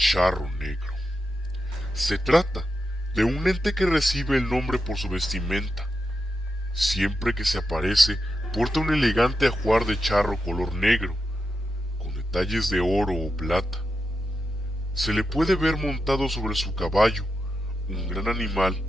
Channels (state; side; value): normal; both; correlation 0.88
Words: negro. Se trata de un ente que recibe el nombre por su vestimenta. Siempre que se aparece, porta un elegante ajuar de charro color negro, con detalles de oro o plata. Se le puede ver montado sobre su caballo, un gran animal